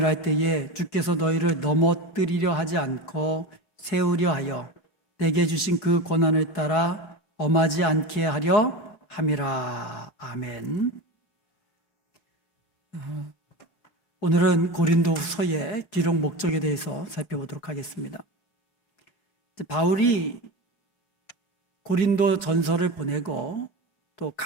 때에 주께서 너희를 넘어뜨리려 하지 않고 세우려 하여 내게 주신 그 권한을 따라 엄하지 않게 하려 함이라. 아멘. 오늘은 고린도후서의 기록 목적에 대해서 살펴보도록 하겠습니다. 바울이 고린도 전서를 보내고 또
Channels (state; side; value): late; right; 5.4 ms